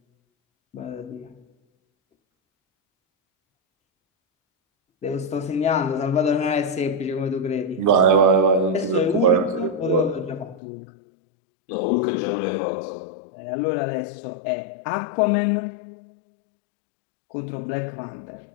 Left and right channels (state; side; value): drops out; right; at 10.6 s